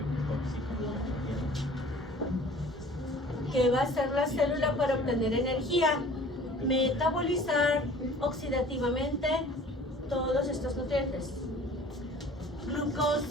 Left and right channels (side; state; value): both; normal; correlation 0.48